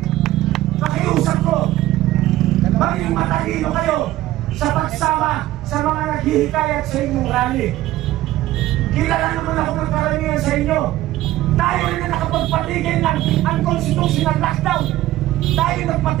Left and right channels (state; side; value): quieter; left; 15.3 dB